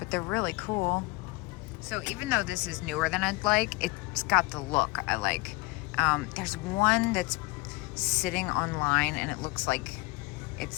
they're really cool. So even though this is newer than I'd like, it's got the look I like. There's one that's sitting online, and it looks like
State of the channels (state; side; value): quieter; right; 23.4 dB